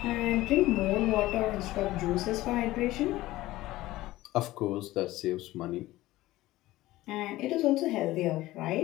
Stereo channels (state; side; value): quieter; right; 17.1 dB